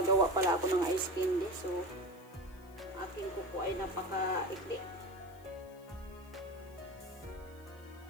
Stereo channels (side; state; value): left; noise; hiss, 26 dB below the sound